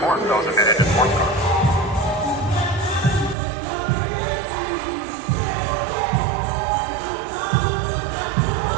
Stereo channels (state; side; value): drops out; left; at 3.4 s